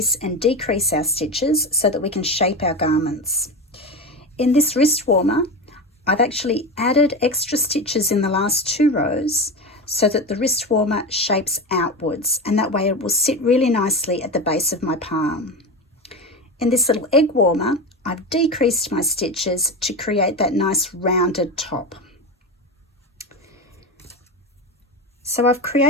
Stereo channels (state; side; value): normal; both; correlation 0.22